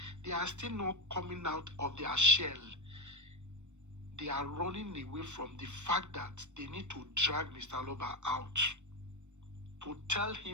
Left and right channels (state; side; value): late; left; 0.84 ms